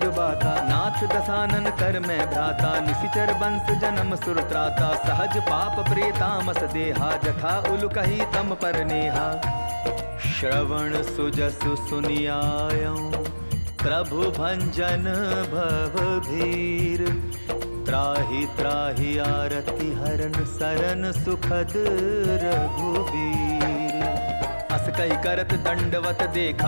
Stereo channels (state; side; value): inverted; both; correlation -1.00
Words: बाता। नाथ दसानन कर मैं भ्राता निशिचर बंस जन्म सुर त्राता। सहज पाप प्रेतामस देहा जथा उल कही तम पर नेहा। श्रवण सुजसु सुनियायऊं प्रभु भंजन भव भीर। त्राहि त्राहि आरति हरन सरन सुखद रघुबीर। अस कही करत दंडवत